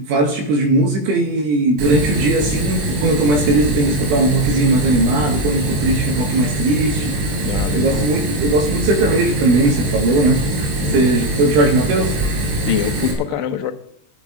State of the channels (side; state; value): left; late; 20 ms